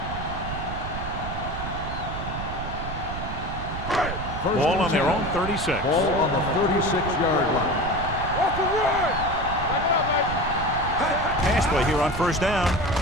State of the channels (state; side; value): noise; right; rumble, 7 dB below the sound